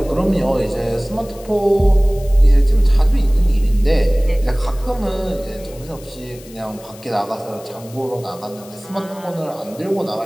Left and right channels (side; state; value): left; noise; hiss, 21 dB below the sound